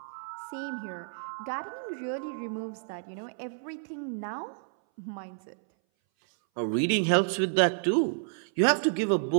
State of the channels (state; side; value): silent; left; 58 dB below the other